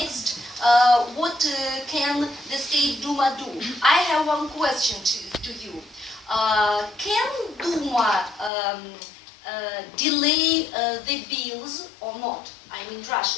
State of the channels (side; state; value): right; drops out; at 8.5 s